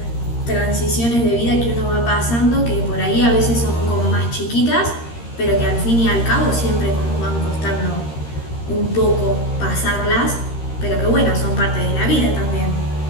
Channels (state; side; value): late; right; 13 ms